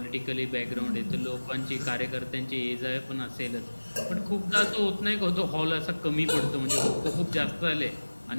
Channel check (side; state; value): both; inverted; correlation -1.00